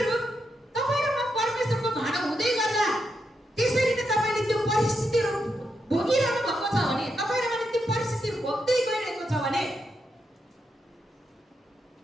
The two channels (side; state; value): both; normal; correlation 0.83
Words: तपाईँ र म परमेश्वरको भाँडो हुँदै गर्दा त्यसरी नै तपाईँले त्यो परिस्थितिहरू भोगिरहनु भएको छ भने, तपाईँ र मैले त्यो परिस्थितिहरू भोग्दै गइरहेको छ भने